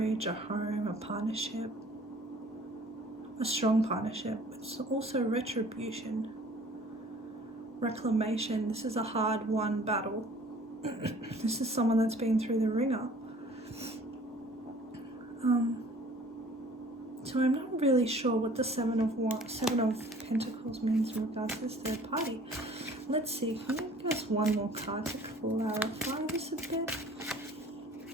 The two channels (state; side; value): normal; both; correlation 0.51